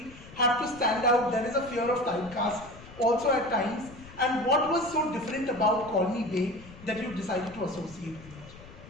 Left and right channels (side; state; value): left; noise; rumble, 18 dB below the sound